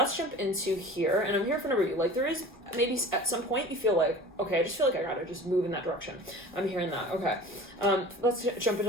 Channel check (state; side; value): normal; both; correlation 0.40